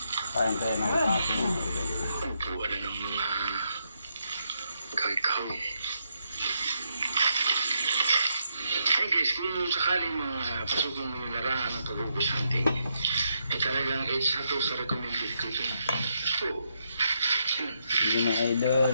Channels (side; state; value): both; inverted; correlation -0.78